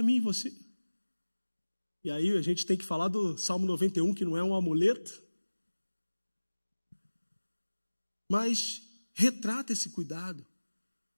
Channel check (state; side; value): inverted; both; correlation -1.00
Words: mim e você. E aí a gente tem que falar do Salmo 91, que não é um amuleto, mas retrata esse cuidado.